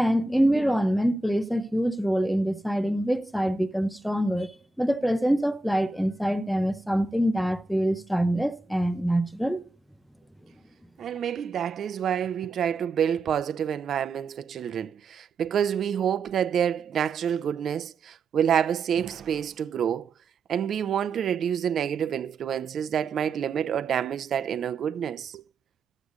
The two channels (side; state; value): left; quieter; 3.3 dB